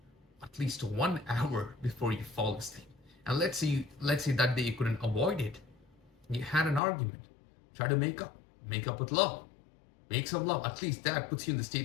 at least 1 hour before you fall asleep. And let's say that day you couldn't avoid it. You had an argument. Try to make up with love. Make some love. At least that puts you in the state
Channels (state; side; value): drops out; right; at 6.8 s